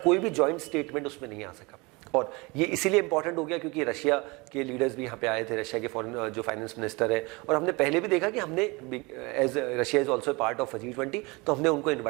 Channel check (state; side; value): quieter; left; 26.0 dB